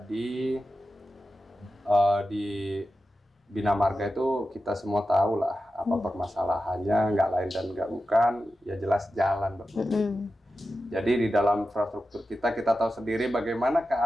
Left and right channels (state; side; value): normal; both; correlation 0.91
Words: di bina marga itu kita semua tahu lah apa permasalahannya, nggak lain dan nggak bukan, ya jelas jalan. Jadi di dalam infrastruktur kita tahu sendiri bagaimana